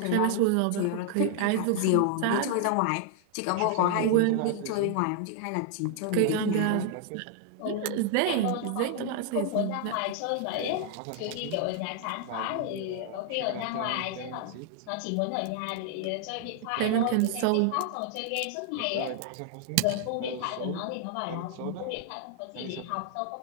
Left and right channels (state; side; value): different; both; correlation 0.00